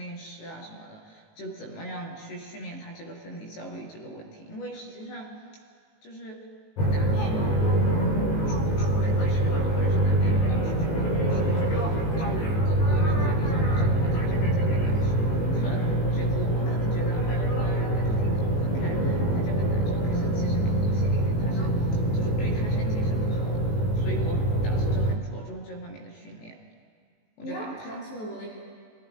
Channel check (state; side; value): late; right; 19 ms